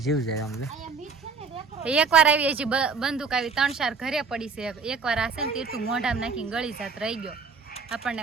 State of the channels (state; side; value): quieter; left; 5.0 dB